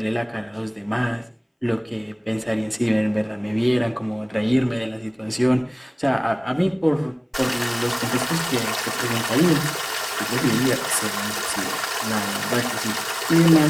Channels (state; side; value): identical; both; correlation 1.00